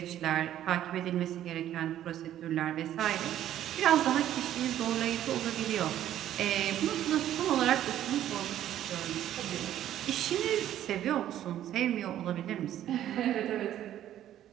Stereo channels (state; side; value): quieter; left; 11.9 dB